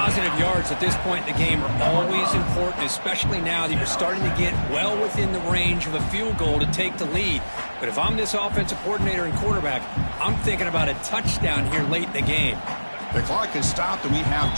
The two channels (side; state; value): both; inverted; correlation -1.00